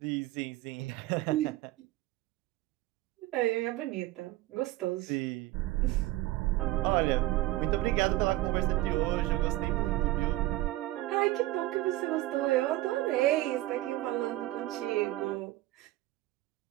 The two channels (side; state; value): left; quieter; 17.3 dB